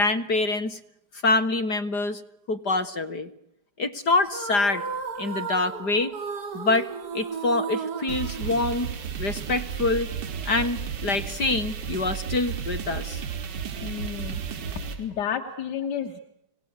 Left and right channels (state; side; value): late; right; 5.0 ms